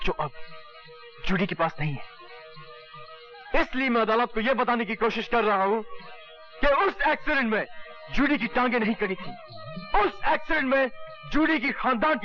जो अब जूडी के पास नहीं है। इसलिए मैं अदालत को यह बताने की कोशिश कर रहा हूं कि उस एक्सीडेंट में जूडी की टांगें नहीं कटी थी। उस एक्सीडेंट में जूडी की खानदान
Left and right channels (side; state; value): both; identical; correlation 1.00